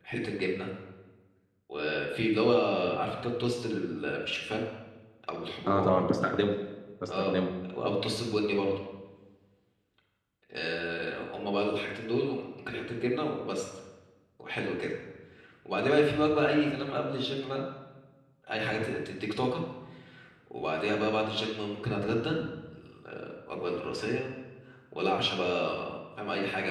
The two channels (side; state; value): both; identical; correlation 1.00